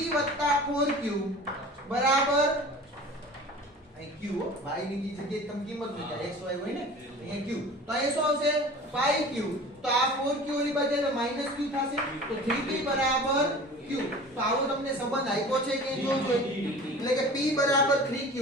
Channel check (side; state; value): both; normal; correlation 0.40